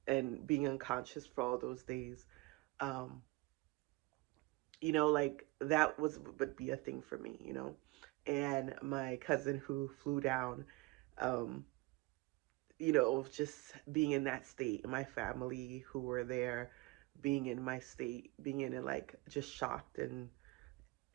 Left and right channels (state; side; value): quieter; left; 22.6 dB